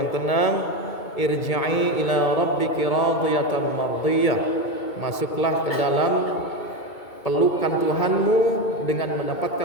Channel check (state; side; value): late; right; 2.2 ms